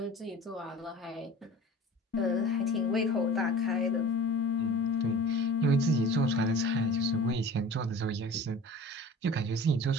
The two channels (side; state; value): both; normal; correlation 0.41